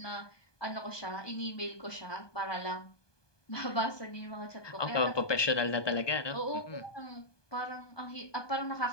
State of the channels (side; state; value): right; late; 1.2 ms